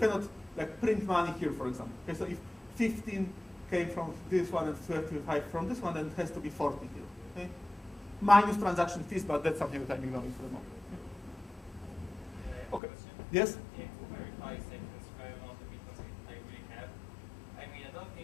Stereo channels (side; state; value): right; drops out; at 12.8 s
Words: like, print money here, for example. Okay, so if 15 came from this one and 35 from this one, then it has to be 40 here, okay? Minus transaction fees, but that's something that I'm ignoring for the moment. Okay. Yes? Yeah, to verify the amount of bitcoins I really have. I mean, I don't